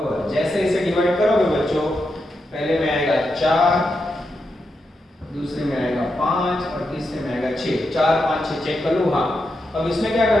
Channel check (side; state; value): both; normal; correlation 0.86